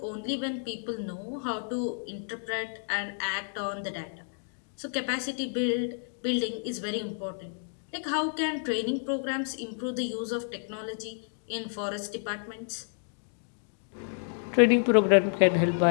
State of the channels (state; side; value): silent; right; digital silence